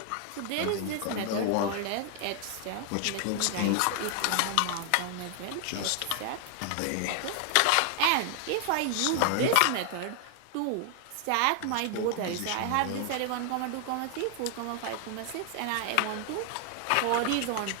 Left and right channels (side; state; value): both; different; correlation 0.00